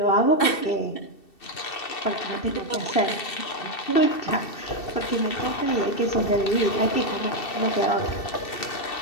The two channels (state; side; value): late; right; 2.7 ms